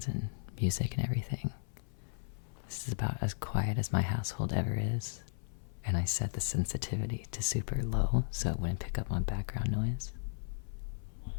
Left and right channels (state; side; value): silent; right; 54 dB below the other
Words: and music and everything. This is about as quiet as my household ever is. And I set the sensitivity to super low so it wouldn't pick up on background noise.